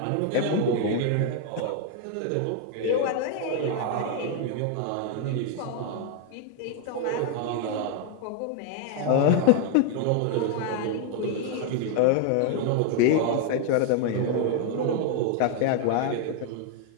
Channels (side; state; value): both; different; correlation 0.00